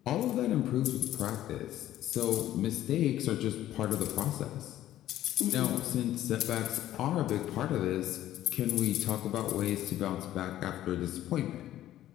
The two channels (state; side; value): quieter; right; 13.3 dB